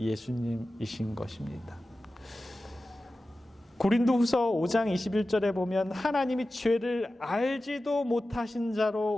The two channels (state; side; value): normal; both; correlation 0.95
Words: 것입니다. 고린도후서 5장 21절에 보면 하나님이 죄를 알지도 못하신